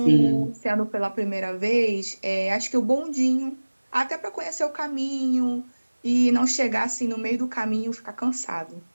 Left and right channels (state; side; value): inverted; both; correlation -1.00